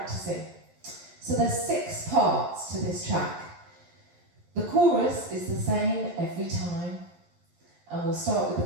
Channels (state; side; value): late; left; 12 ms